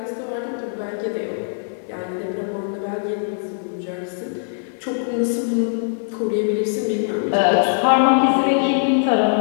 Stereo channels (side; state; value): right; silent; 65 dB below the other